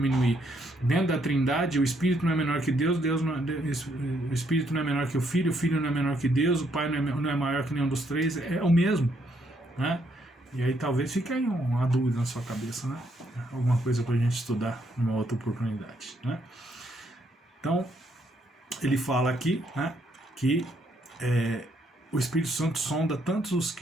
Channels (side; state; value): both; normal; correlation 0.72